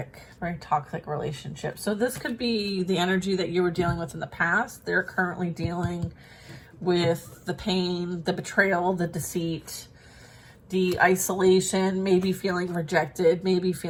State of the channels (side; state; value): both; identical; correlation 1.00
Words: relationship. So this could be the energy that you were dealing with in the past. They're currently dealing with the pain, the betrayal, the deceit, the isolation, maybe feeling rejected, maybe